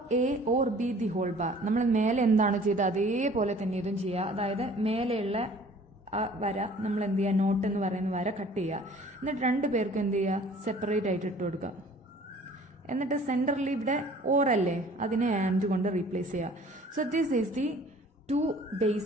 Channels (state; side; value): normal; both; correlation 0.51